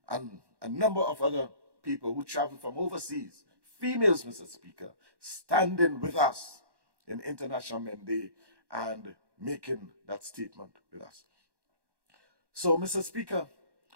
and a number of other people who traveled from overseas, females, Mr. Speaker, standing with us in International Men Day and making that statement with us. So, Mr. Speaker,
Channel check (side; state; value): left; late; 1.1 ms